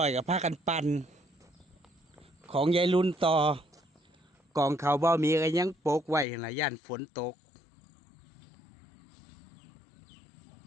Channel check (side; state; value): right; drops out; at 6.2 s